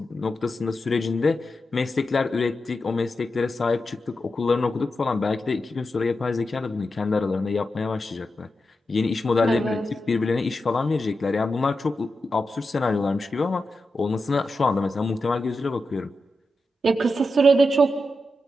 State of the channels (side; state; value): both; normal; correlation 0.89